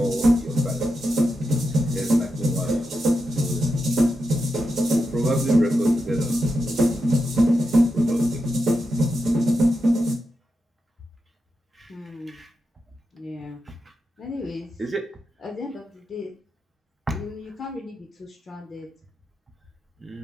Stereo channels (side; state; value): both; normal; correlation 0.88